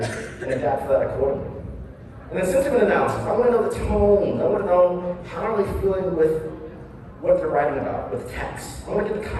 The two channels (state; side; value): identical; both; correlation 1.00